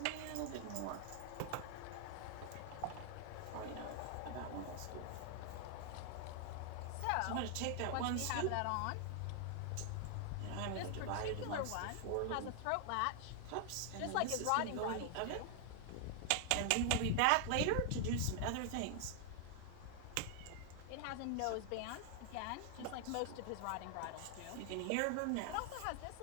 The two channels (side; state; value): both; different; correlation 0.00